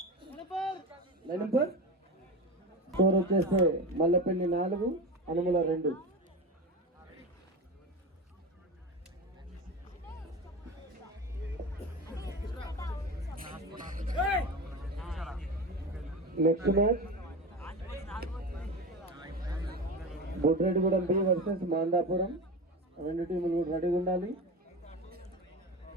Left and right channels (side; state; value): both; normal; correlation 0.25